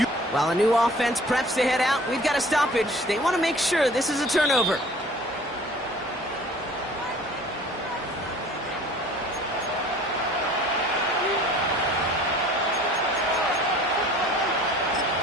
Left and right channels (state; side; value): normal; both; correlation 0.49